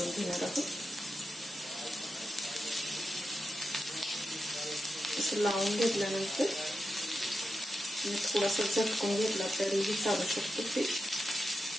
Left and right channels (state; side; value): normal; both; correlation 0.89